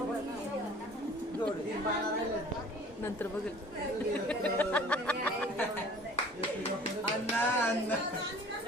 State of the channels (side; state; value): both; normal; correlation 0.48